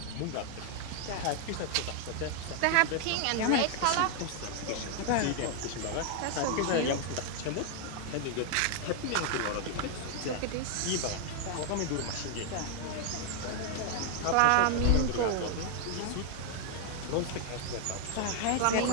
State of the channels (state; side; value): different; both; correlation 0.00